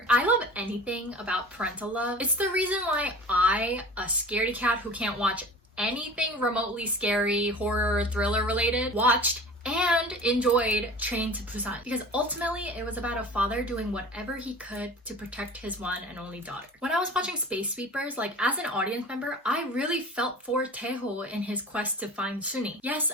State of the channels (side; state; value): both; normal; correlation 0.39